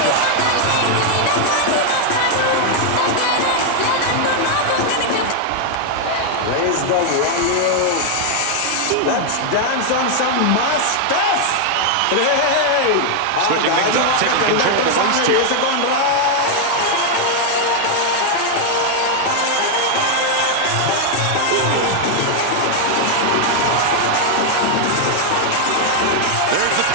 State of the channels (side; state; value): both; different; correlation 0.00